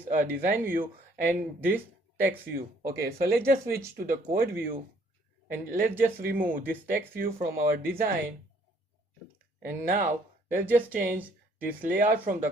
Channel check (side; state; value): both; normal; correlation 0.63